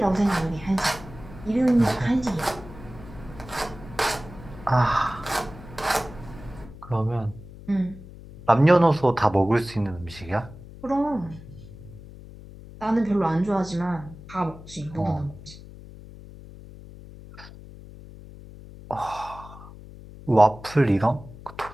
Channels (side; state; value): left; noise; hum, 17 dB below the sound